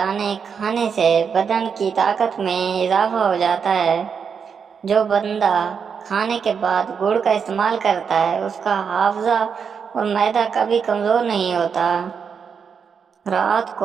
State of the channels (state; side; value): quieter; left; 6.5 dB